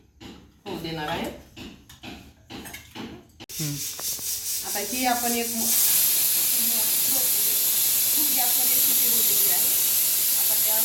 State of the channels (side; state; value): both; identical; correlation 1.00